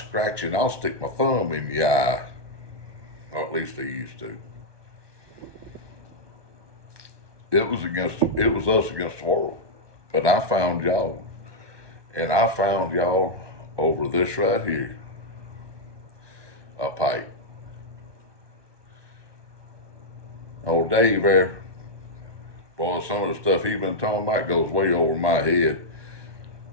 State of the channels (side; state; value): left; late; 1.2 ms